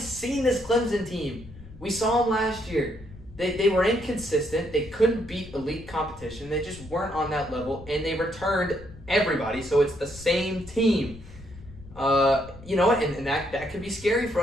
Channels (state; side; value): noise; left; rumble, 18 dB below the sound